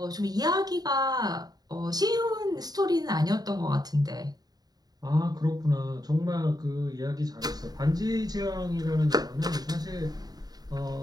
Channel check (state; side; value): late; left; 0.19 ms